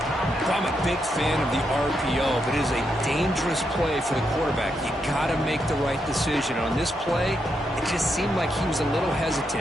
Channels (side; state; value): both; normal; correlation 0.81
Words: I'm a big fan of the RPO, but it is a dangerous play for the quarterback. You got to make the right decision. On this play, it just seemed like he was a little